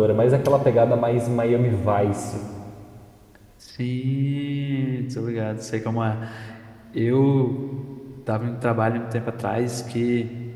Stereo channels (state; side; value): identical; both; correlation 1.00